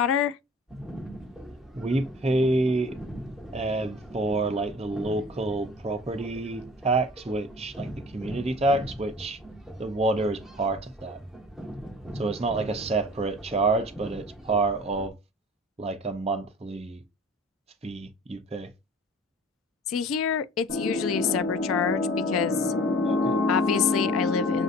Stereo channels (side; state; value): both; normal; correlation 0.44